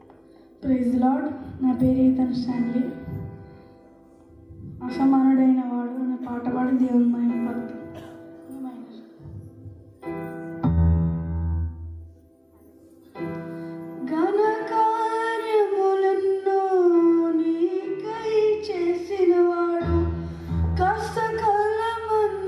Praise lord. నా పేరు ఈతన్ స్టాన్లీ. అసమానుడైన వాడు అనే పాట పాడి దేవుని మహిమపడుతుంది. ఘన కార్యములెన్నో నీకై చేసిన వాడు, కష్టకాలమందుని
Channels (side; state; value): both; identical; correlation 1.00